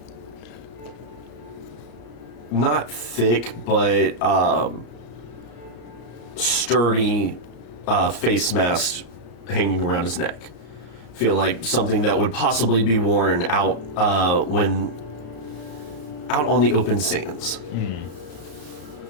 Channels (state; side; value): late; right; 34 ms